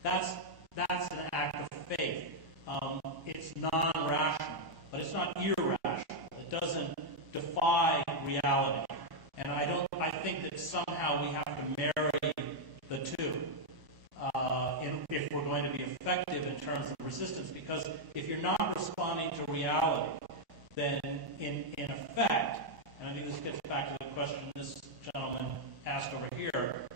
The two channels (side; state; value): left; late; 1.0 ms